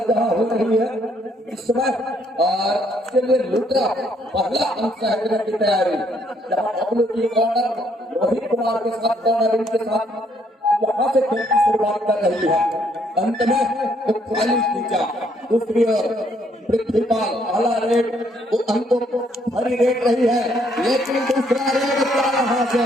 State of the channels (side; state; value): both; normal; correlation 0.69